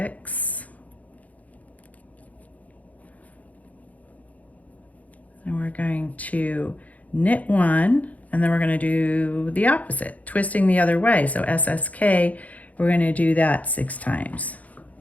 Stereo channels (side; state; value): right; late; 0.073 ms